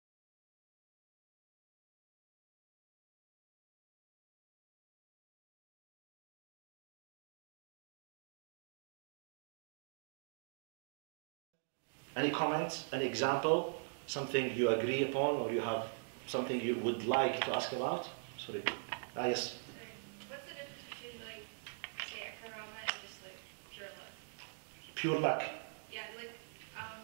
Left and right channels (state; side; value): silent; left; digital silence